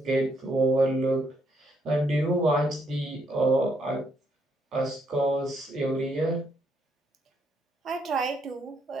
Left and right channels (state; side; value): normal; both; correlation 0.74